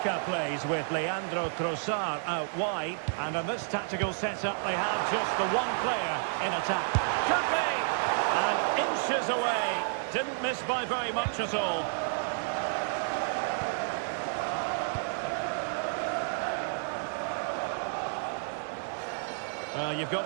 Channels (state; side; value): silent; left; digital silence